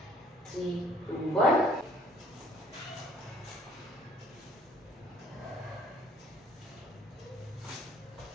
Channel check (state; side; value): normal; both; correlation 0.58